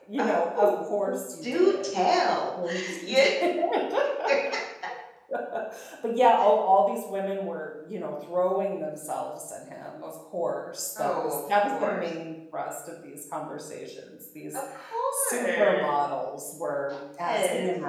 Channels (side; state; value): both; identical; correlation 1.00